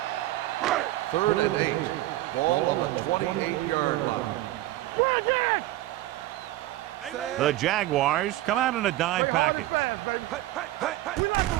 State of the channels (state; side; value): quieter; left; 16.1 dB